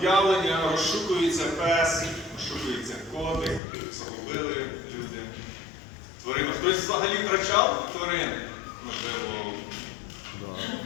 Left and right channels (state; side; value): drops out; right; at 3.6 s